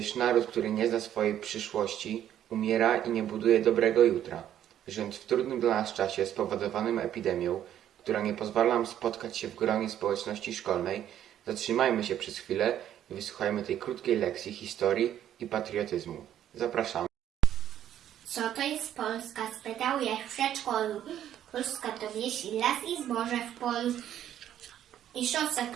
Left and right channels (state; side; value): quieter; left; 11.0 dB